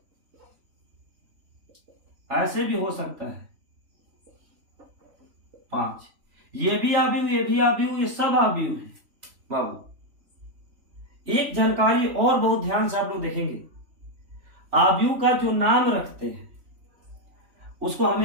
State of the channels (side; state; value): left; late; 3.5 ms